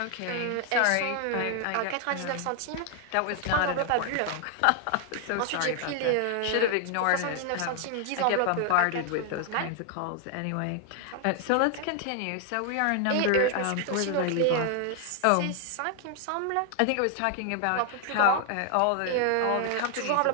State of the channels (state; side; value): different; both; correlation 0.00